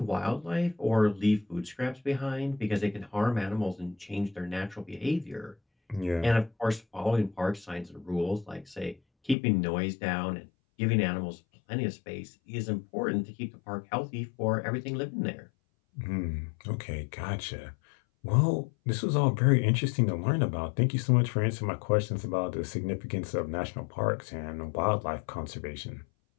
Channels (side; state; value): right; drops out; at 9.3 s